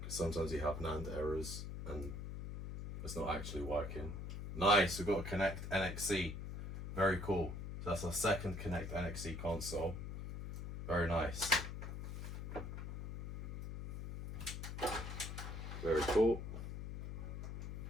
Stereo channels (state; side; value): noise; left; hum, 7 dB below the sound